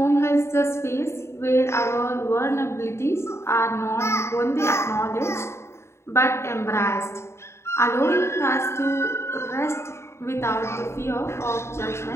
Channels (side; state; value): right; late; 0.13 ms